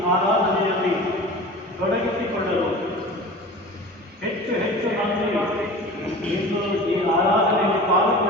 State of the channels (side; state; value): both; normal; correlation 0.37